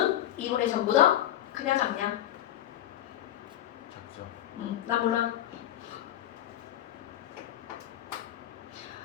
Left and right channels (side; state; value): right; quieter; 12.7 dB